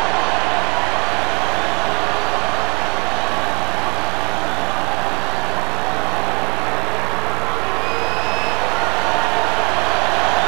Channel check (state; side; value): quieter; left; 29.6 dB